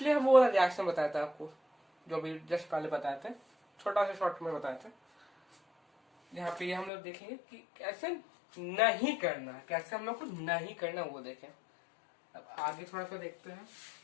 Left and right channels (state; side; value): drops out; right; at 6.9 s